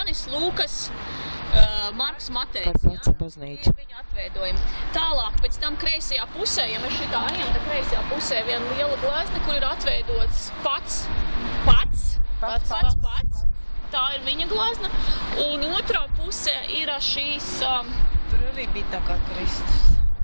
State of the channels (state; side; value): inverted; both; correlation -1.00